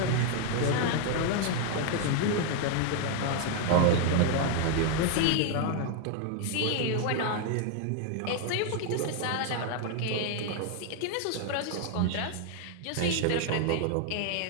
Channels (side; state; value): both; different; correlation 0.00